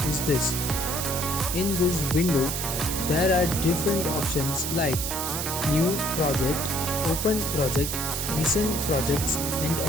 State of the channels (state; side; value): noise; right; hiss, 3 dB below the sound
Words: is this. In this window, there are different options like New Project, Open Project, Recent Projects and